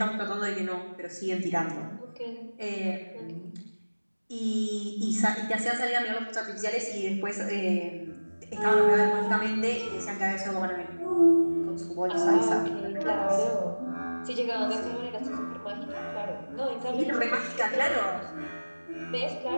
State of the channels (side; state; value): both; inverted; correlation -1.00